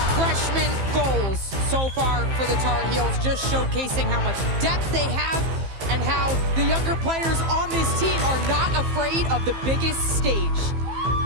freshman goals so far for the Tar Heels, just showcasing how much depth they have and how the younger players on this team are not afraid of the biggest stage.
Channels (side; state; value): left; late; 15 ms